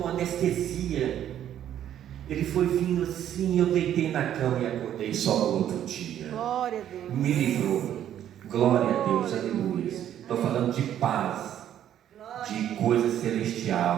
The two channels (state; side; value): quieter; left; 10.8 dB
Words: anestesia. Ele foi vindo assim, eu deitei na cama e acordei só no outro dia. Glória a Deus. Me livrou. Glória a Deus, aleluia. Estou falando de paz, de coisa